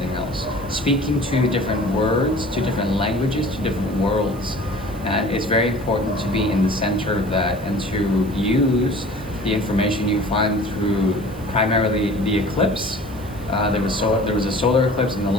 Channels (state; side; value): noise; right; hiss, 23 dB below the sound